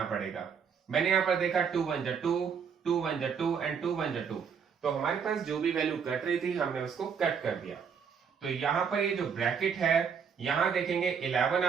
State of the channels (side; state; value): left; quieter; 6.7 dB